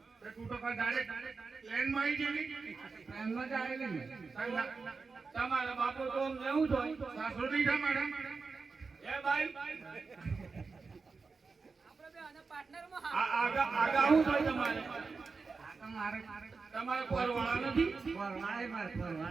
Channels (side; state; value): left; quieter; 4.5 dB